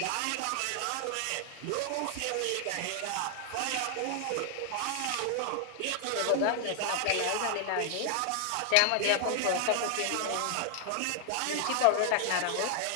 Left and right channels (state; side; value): different; both; correlation 0.00